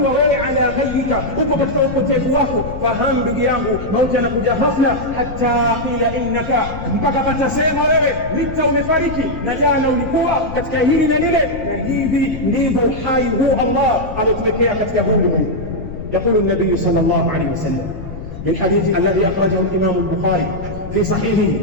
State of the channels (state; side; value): noise; left; rumble, 10 dB below the sound